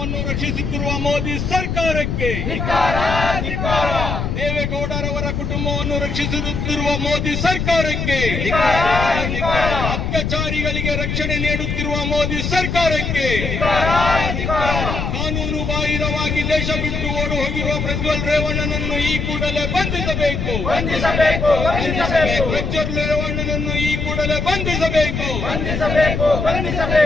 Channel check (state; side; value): noise; left; rumble, 2 dB below the sound